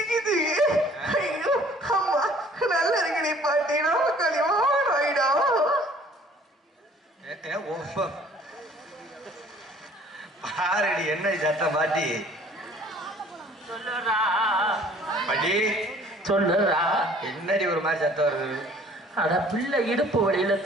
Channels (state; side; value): normal; both; correlation 0.54